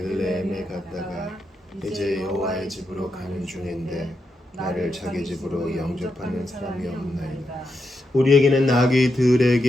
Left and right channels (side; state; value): both; normal; correlation 0.84